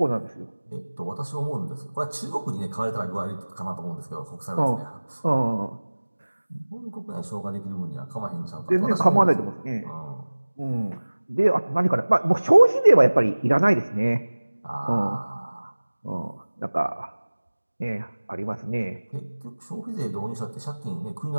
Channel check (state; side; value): inverted; both; correlation -1.00